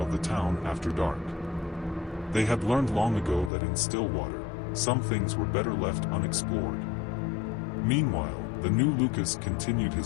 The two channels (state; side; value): drops out; right; at 3.5 s